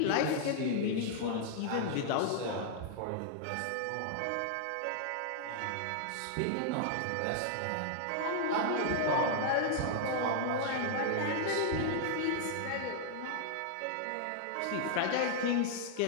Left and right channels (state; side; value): different; both; correlation -0.01